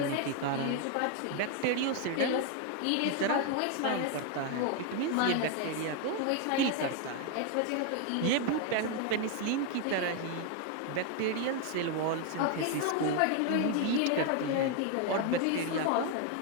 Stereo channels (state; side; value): different; both; correlation 0.01